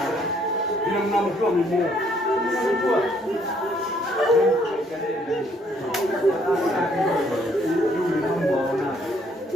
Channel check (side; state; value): both; normal; correlation 0.66